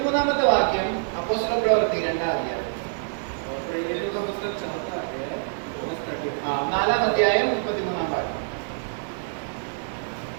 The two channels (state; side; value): silent; left; 61 dB below the other